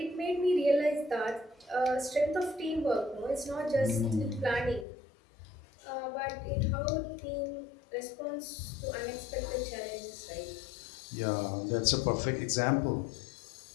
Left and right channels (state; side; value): drops out; right; at 4.9 s